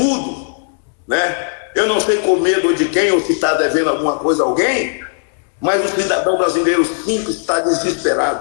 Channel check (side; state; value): right; silent; 67 dB below the other